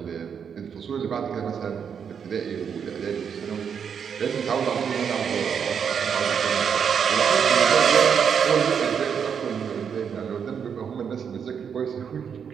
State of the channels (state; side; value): quieter; left; 7.2 dB